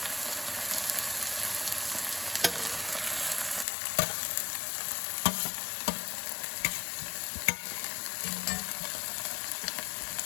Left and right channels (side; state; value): right; drops out; at 3.7 s